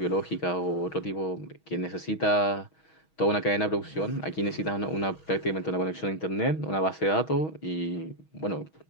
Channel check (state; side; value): late; right; 6.3 ms